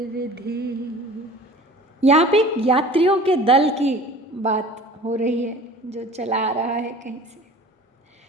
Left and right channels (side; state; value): both; normal; correlation 0.43